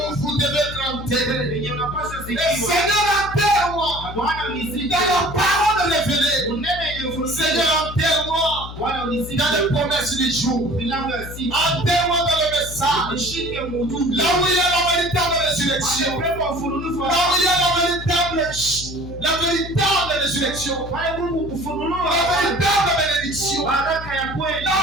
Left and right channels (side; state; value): left; noise; hum, 11 dB below the sound